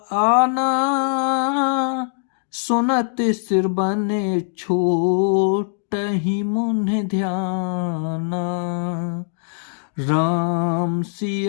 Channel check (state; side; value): silent; right; digital silence